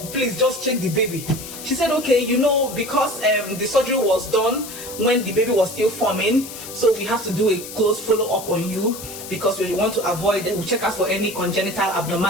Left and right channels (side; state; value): left; noise; hiss, 12 dB below the sound